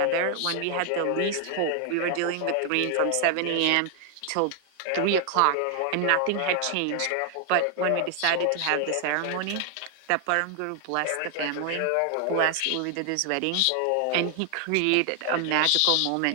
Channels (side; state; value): both; different; correlation 0.00